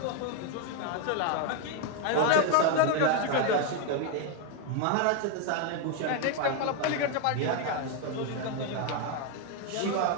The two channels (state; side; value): different; both; correlation 0.01